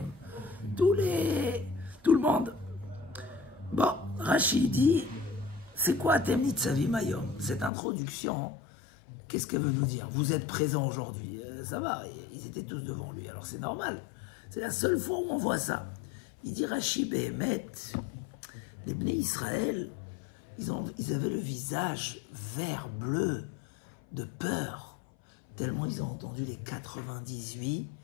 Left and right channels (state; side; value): drops out; right; at 7.7 s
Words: tout le monde. Bon, Rashi dit, c'est quoi Atem Nitzavim Ayom? Cette introduction, qu'est-ce qu'elle veut nous dire? Vous êtes présents aujourd'hui, ça va, ils étaient tous devant lui, alors c'est normal. C'est la seule fois où on voit ça. Il dit Rashi Behemet, les Bnei Israël, ils avaient le visage vert bleu de peur, tellement ils ont entendu les 98